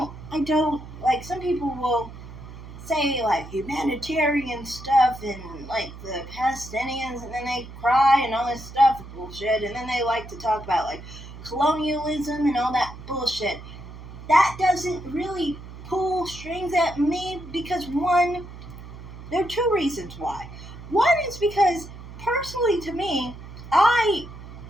like, some people will say, like, humanitarian stuff and, like, the Palestinians, and then they cry and all this stuff bullshit, and then they like to talk about, like, colonialism and all that bullshit. That doesn't really pull strings at me because, one, there are two reasons why. One is because, personally to me, I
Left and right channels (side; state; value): right; noise; hum, 14 dB below the sound